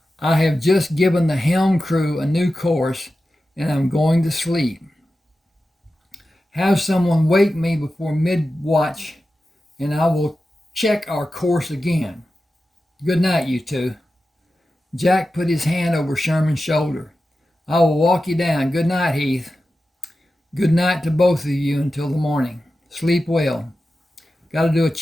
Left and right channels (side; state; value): both; normal; correlation 0.93